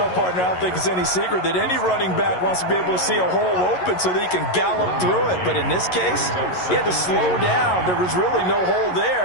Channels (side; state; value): right; late; 11 ms